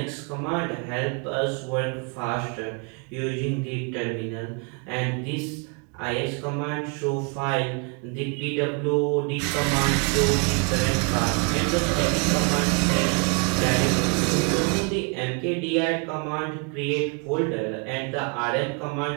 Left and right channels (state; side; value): quieter; left; 35.0 dB